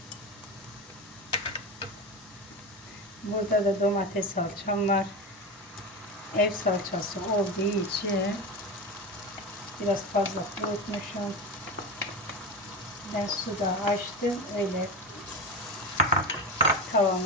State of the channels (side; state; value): both; normal; correlation 0.22